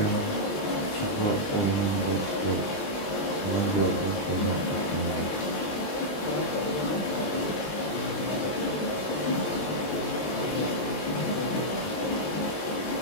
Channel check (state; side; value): late; right; 20 ms